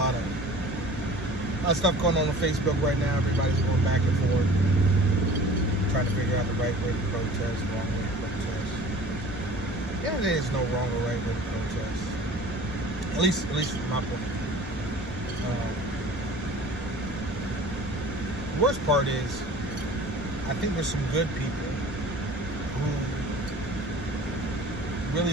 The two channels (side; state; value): both; normal; correlation 0.44